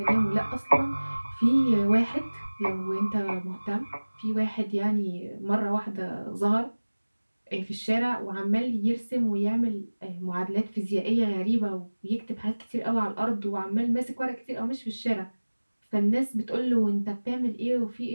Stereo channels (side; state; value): both; inverted; correlation -1.00